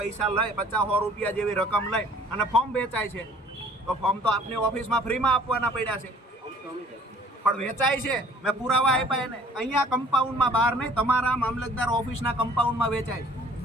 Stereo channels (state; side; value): normal; both; correlation 0.54